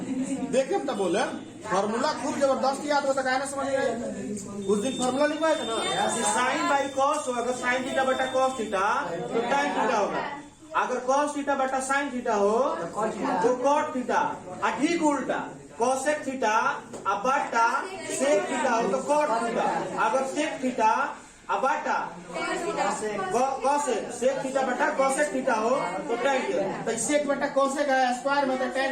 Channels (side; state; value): both; identical; correlation 1.00